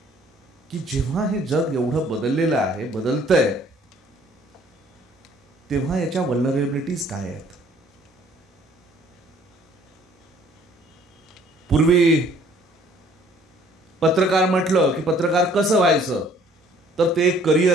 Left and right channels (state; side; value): normal; both; correlation 0.58